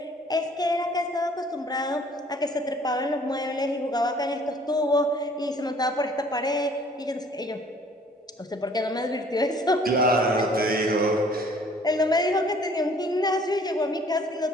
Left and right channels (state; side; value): normal; both; correlation 0.56